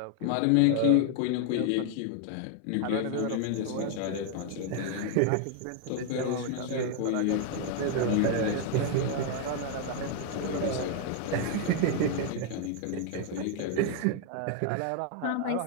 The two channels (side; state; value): both; different; correlation 0.00